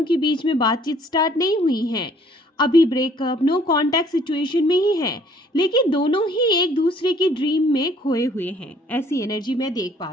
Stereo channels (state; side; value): normal; both; correlation 0.60